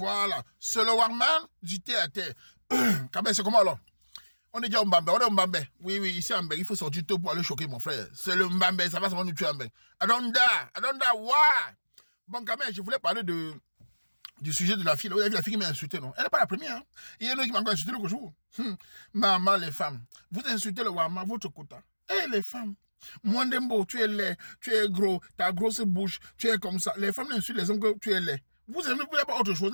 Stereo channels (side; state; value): both; inverted; correlation -1.00